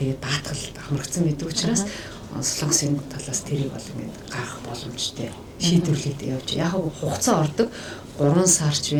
даатгал хамрагдсан байдаг учраас Солонгосын талаас тэрийг бол ингээд гарах боломжтой шийдвэрлээд явж яг хугацаа ордог 3 сарч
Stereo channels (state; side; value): identical; both; correlation 1.00